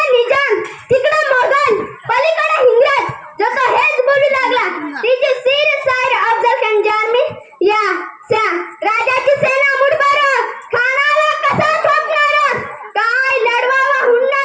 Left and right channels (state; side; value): identical; both; correlation 1.00